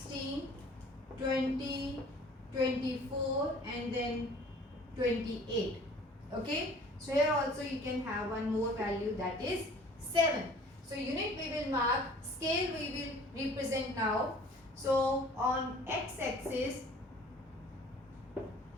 20, 24 and then 28. Okay. So here also you can have one more value, that is 7. So unit we will mark, scale we will represent now. So on x-axis,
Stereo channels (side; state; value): both; normal; correlation 0.50